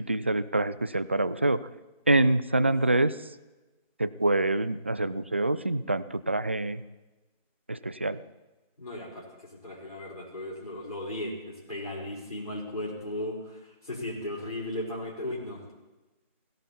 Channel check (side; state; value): both; inverted; correlation -0.78